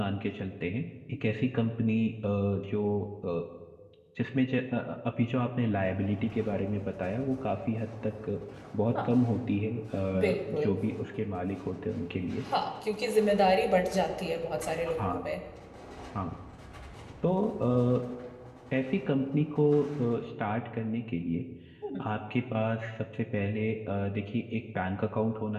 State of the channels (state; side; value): identical; both; correlation 1.00